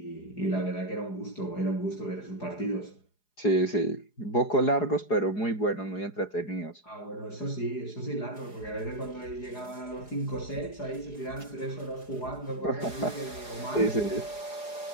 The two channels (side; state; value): right; late; 4.8 ms